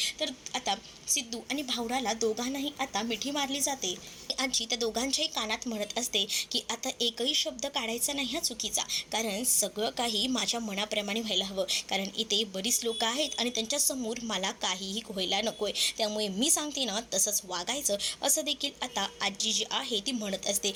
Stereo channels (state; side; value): identical; both; correlation 1.00